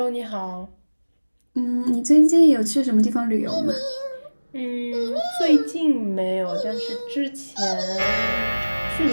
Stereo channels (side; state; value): both; inverted; correlation -1.00